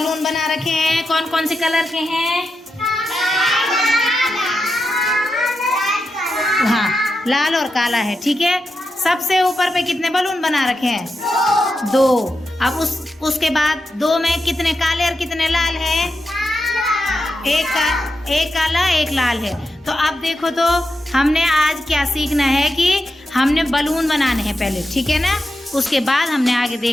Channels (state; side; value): normal; both; correlation 0.88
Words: बना रखे हैं। कौन कौन से कलर के हैं? हाँ, लाल और काला है। ठीक है, सबसे ऊपर पे कितने बलून बना रखे हैं? 2। अब उसके बाद 2 में कितने काले और कितने लाल है? एक काला एक लाल है। तो अब देखो, तो हमने आज क्या सीखना है कि हमने बलून बनाने हैं पहले, ठीक है ना। उसके बाद हमने आगे